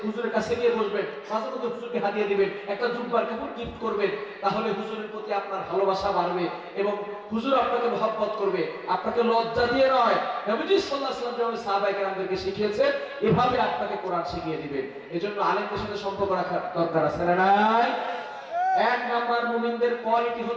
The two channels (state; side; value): identical; both; correlation 1.00